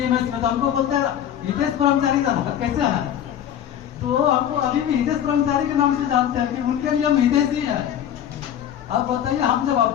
में, तो हमको बोलते हैं हितेश ब्रह्मचारी कैसे है, तो हमको अभी भी हितेश ब्रह्मचारी के नाम से जानते हैं कि उनके लिए हम हितेश ही है। अब बताइए हम जब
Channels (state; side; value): quieter; right; 10.1 dB